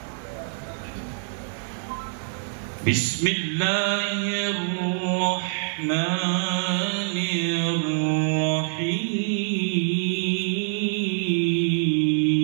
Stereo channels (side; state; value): left; silent; 62 dB below the other